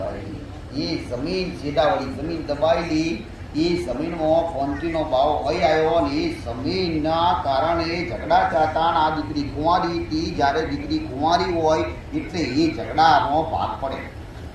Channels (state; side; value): identical; both; correlation 1.00